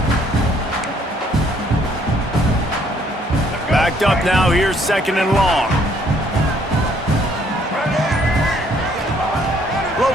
Backed up now, here's 2nd and long.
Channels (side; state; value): both; normal; correlation 0.65